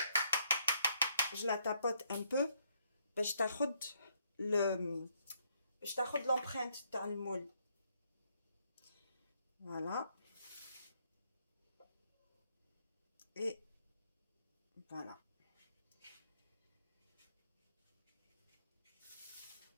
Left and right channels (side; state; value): both; inverted; correlation -0.72